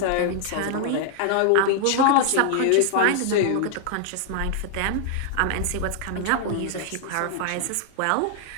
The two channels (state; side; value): different; both; correlation 0.00